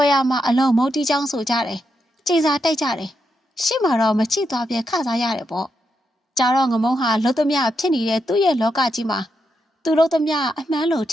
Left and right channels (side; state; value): both; normal; correlation 0.83